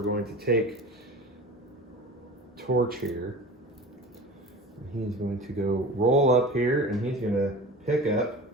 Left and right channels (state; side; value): normal; both; correlation 0.36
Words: going to take Torch here. He's going to go roll up here and he's gonna pick up